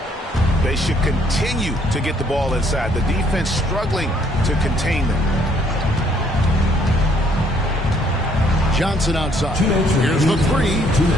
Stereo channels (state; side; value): normal; both; correlation 0.66